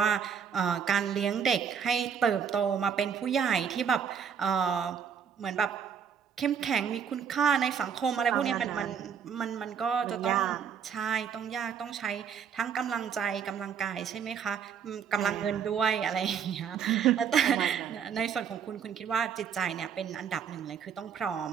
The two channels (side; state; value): left; quieter; 7.4 dB